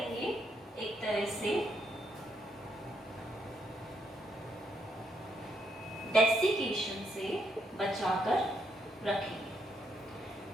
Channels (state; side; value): normal; both; correlation 0.75